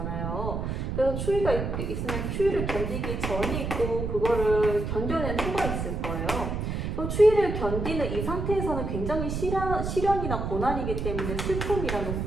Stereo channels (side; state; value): right; noise; rumble, 3 dB below the sound